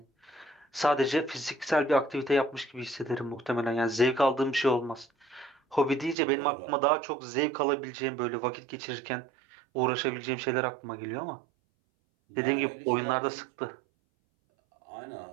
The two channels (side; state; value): left; drops out; at 6.2 s